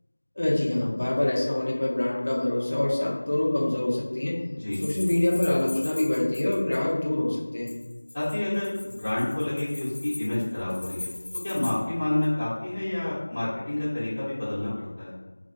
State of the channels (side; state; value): both; inverted; correlation -1.00